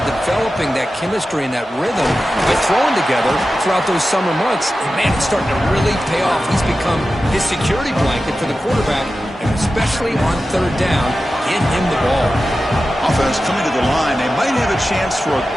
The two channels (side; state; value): both; normal; correlation 0.93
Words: developing that chemistry and that rhythm by throwing together throughout those summer months. And man, it's starting to really pay off. He's become his security blanket for the quarterback, and especially on third down, get him the ball. Offense coming to the line. They might have a chance for a